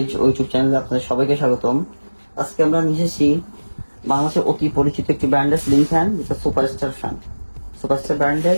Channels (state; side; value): inverted; both; correlation -1.00